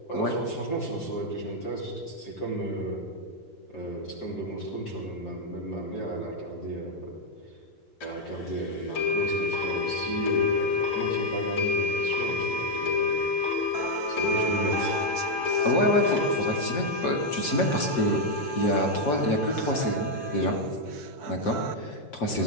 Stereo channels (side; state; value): right; late; 6.3 ms